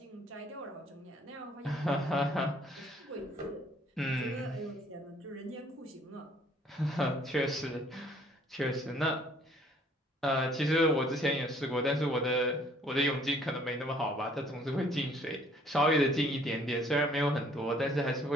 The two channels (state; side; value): normal; both; correlation 0.60